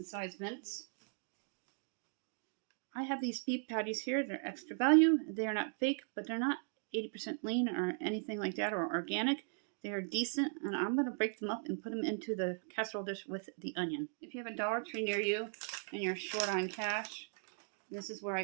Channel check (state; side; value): silent; left; 52 dB below the other